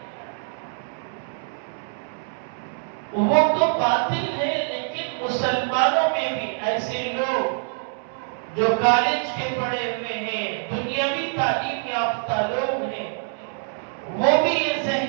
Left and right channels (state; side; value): silent; left; 62 dB below the other